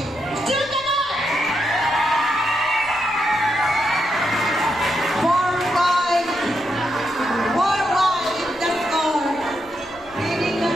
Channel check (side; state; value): right; noise; rumble, 27 dB below the sound